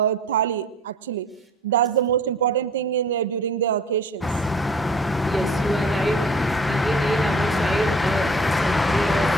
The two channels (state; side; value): normal; both; correlation 0.49